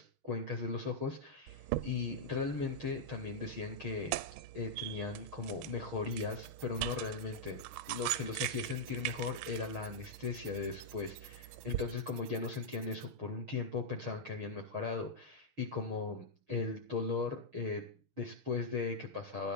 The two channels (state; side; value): late; left; 6.4 ms